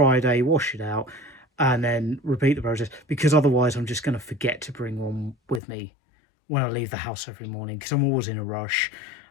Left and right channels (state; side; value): drops out; right; at 5.6 s